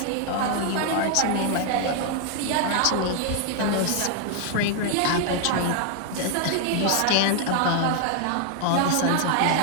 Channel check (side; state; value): both; different; correlation 0.00